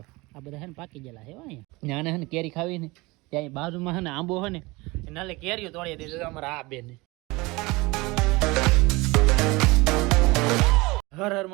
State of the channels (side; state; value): left; quieter; 23.2 dB